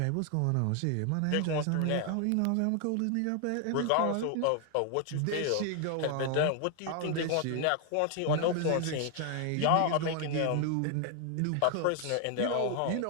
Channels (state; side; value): different; both; correlation 0.00